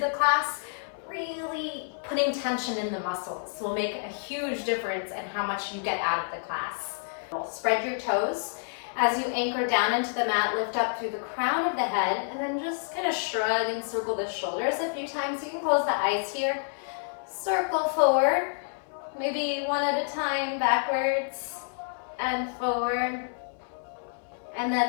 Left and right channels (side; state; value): right; silent; 58 dB below the other